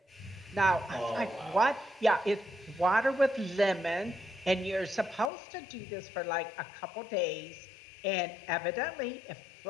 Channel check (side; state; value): right; drops out; at 5.3 s